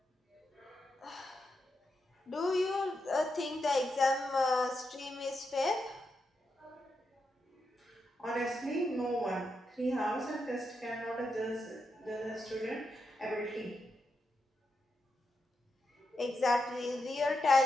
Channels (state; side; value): normal; both; correlation 0.85